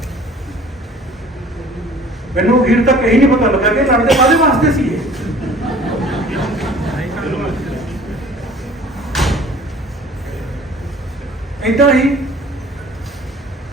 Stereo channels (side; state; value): both; normal; correlation 0.50